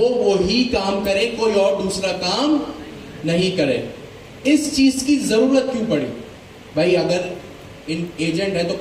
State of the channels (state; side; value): identical; both; correlation 1.00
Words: वही काम करे, कोई और दूसरा काम नहीं करे। इस चीज की जरूरत क्यों पड़ी भाई, अगर इन एजेंट है तो